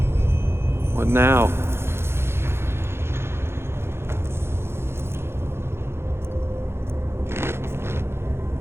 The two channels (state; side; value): late; left; 0.12 ms